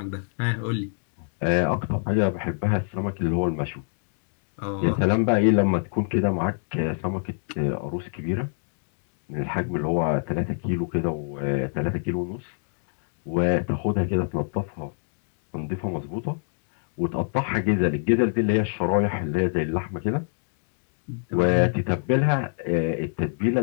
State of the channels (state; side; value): silent; right; digital silence